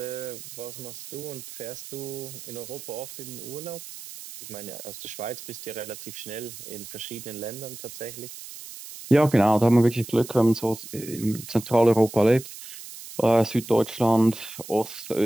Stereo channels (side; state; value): right; noise; hiss, 13 dB below the sound